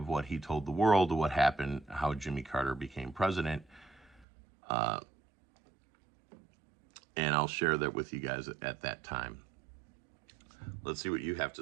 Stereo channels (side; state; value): left; drops out; at 4.2 s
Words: what he told the world, of what happened, how Jimmy Carter became president. And I'll share that with you guys at that time. Let's see what you have